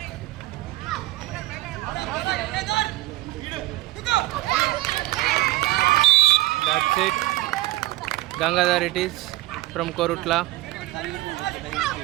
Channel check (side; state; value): left; quieter; 17.8 dB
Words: That's it. Gangadhar it is from Korutla.